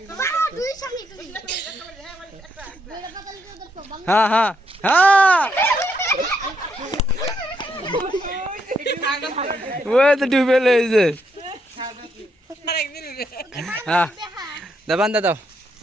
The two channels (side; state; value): both; normal; correlation 0.77